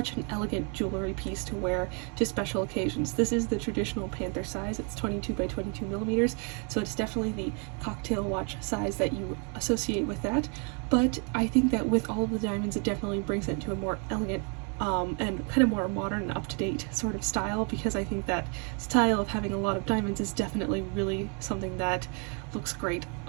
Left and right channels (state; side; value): quieter; left; 37.8 dB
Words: an elegant jewelry piece to wear to special occasions. This is the traditional Panther size. It's 22 by 22 millimeters, so it's definitely the cocktail watch size that you associate with that, but I think that with all of the diamonds it definitely brings it to a more elegant and kind of more modern and up-to-date sort of style, because I think that style of having a lot of diamonds is definitely really something that looks great